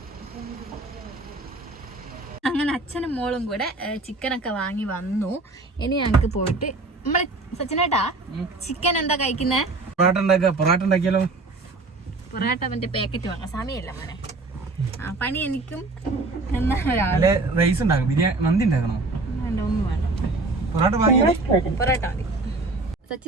അങ്ങനെ അച്ഛനും മോളും കൂടെ ചിക്കനൊക്കെ വാങ്ങി വന്നു. ഇനി ഞങ്ങൾക്ക് പോയിട്ട് നമ്മളെ സച്ചിനേട്ടാ ചിക്കൻ എന്താ കഴിക്കുന്നേ? പൊറാട്ട മറ്റേ പാക്കറ്റ് വാങ്ങാം. സമയമില്ല മോനെ. പണി എനിക്കും പൊറാട്ട മതി.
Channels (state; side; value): quieter; left; 3.3 dB